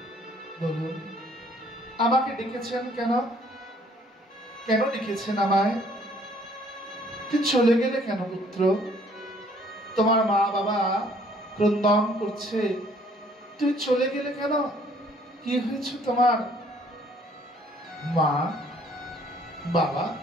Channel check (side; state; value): both; normal; correlation 0.61